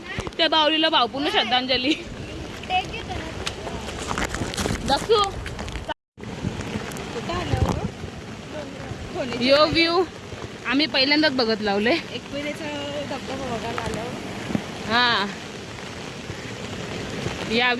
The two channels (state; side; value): identical; both; correlation 1.00